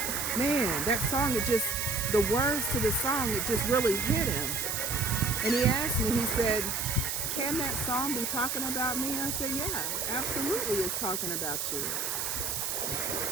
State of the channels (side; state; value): right; noise; hiss, 1 dB below the sound